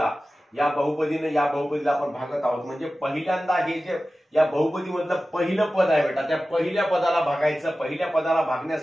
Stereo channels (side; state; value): both; normal; correlation 0.95